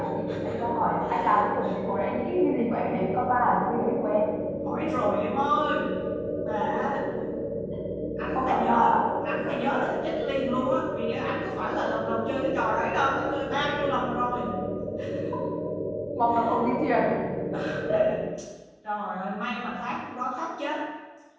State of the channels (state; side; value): identical; both; correlation 1.00